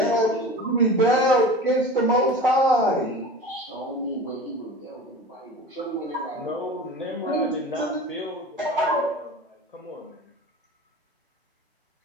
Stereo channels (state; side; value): normal; both; correlation 0.36